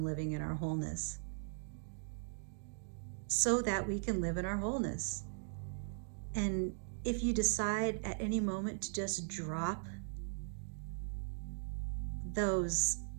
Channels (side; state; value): left; silent; digital silence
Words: living in our wholeness so that we can live in our wholeness. And if you decide at any moment to just drop those